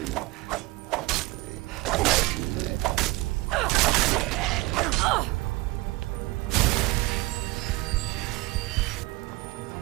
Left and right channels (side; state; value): left; quieter; 21.4 dB